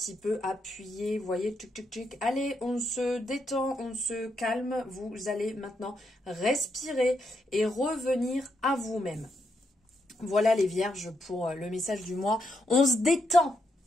peu appuyer, vous voyez, tchic, tchic, tchic. Allez, on se détend, on se calme. Vous allez maintenant respirer et revenir à vous-même. Voilà les vierges pour le message du mois. On se détend.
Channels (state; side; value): normal; both; correlation 0.80